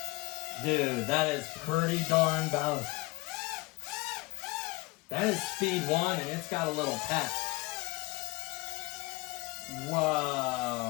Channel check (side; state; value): right; quieter; 24.3 dB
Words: Dude, that is pretty darn balanced. That is speed 1, and it's got a little pep.